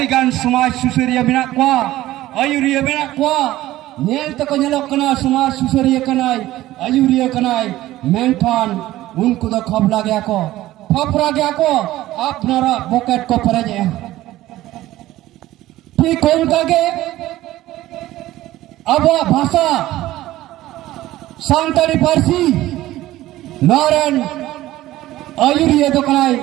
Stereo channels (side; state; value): left; quieter; 15.6 dB